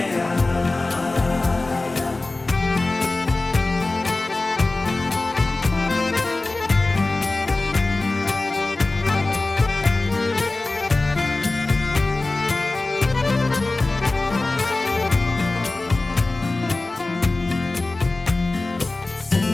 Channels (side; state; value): right; quieter; 3.1 dB